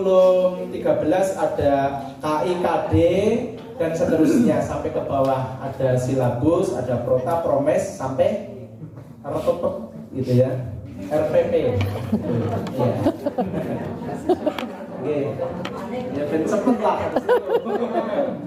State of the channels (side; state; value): both; identical; correlation 1.00